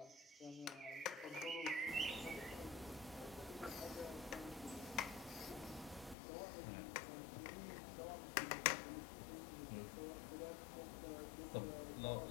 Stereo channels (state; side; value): drops out; right; at 6.2 s